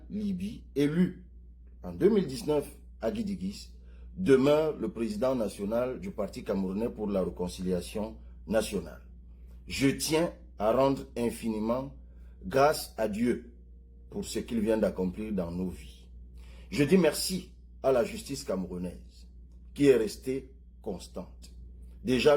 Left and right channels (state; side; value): identical; both; correlation 1.00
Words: Libye, élu en 2019 à Guidigis, demeure le président national du Parti camerounais pour la réconciliation nationale. Je tiens à rendre infiniment grâce à Dieu pour ce qu'il vient d'accomplir dans nos vies. Je dis merci à la justice camerounaise qui est restée constante. Déjà